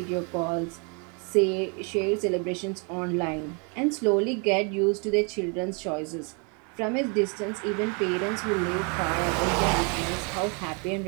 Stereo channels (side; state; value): left; quieter; 35.0 dB